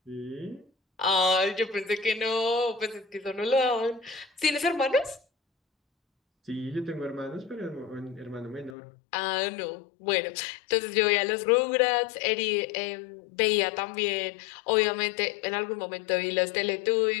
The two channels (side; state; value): right; drops out; at 8.8 s